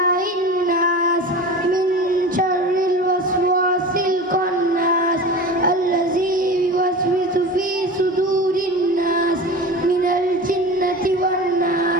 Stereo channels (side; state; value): both; normal; correlation 0.32